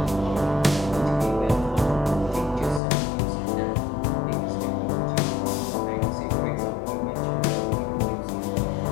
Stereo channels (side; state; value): right; drops out; at 2.8 s